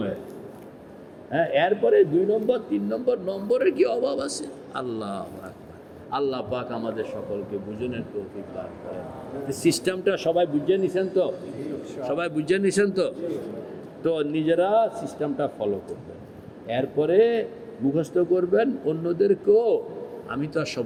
হ্যাঁ, এরপরে 2 নম্বর 3 নম্বর নম্বরের কি অভাব আছে? আল্লাহ আকবার। আল্লাহ পাক আমাদের সকলকে বুঝনের তৌফিক দান করেন। সিস্টেমটা সবাই বুঝে নিছেন তো? সবাই বুঝে নিছেন তো? তো নিজেরা সিস্টেমটা ফলো করবেন, এরপরে মুখস্থ করবেন। অন্যদেরকেও, আমি তো আর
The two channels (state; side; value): identical; both; correlation 1.00